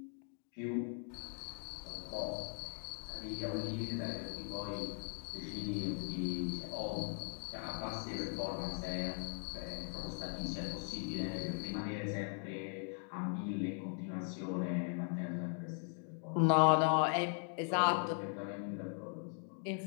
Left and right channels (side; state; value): right; silent; 51 dB below the other